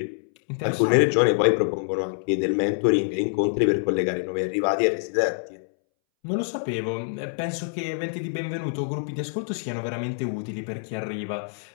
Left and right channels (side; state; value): right; silent; 61 dB below the other